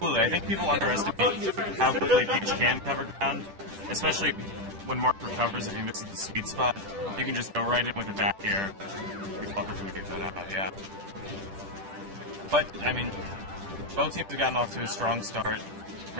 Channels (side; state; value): left; late; 10 ms